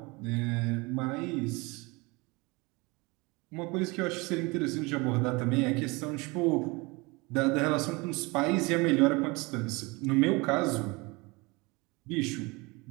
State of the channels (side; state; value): left; quieter; 25.7 dB